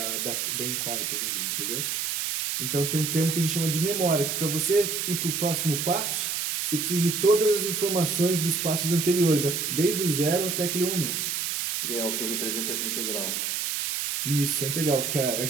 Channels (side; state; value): right; noise; hiss, 1 dB below the sound